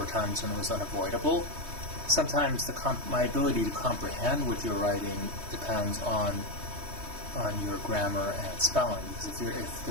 times when it was unavoidable. Sometimes my ability to comprehend what you're writing depends on your grammar and spelling, because if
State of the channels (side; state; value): left; late; 3.2 ms